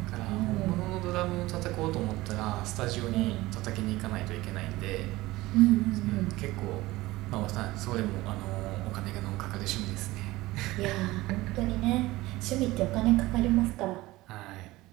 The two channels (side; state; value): left; quieter; 18.9 dB